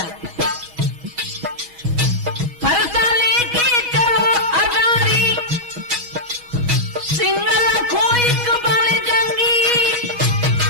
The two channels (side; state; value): left; late; 6.2 ms